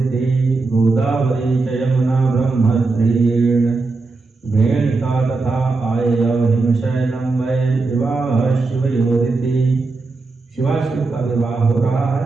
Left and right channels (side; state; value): left; quieter; 3.8 dB